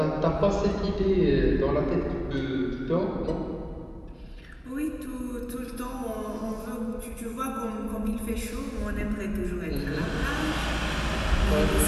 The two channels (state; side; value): identical; both; correlation 1.00